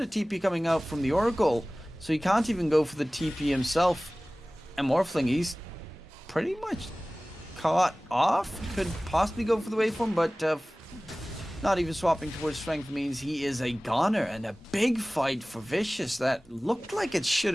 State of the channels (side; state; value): both; normal; correlation 0.98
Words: a TP coming out from the Oracle. So he can't even go for the TP himself. And Morphling, he's pretty much caught off. Could possibly go for the waveform, but not even swapping towards strength means he is a goner. And a big fight for Vicious that looked like it should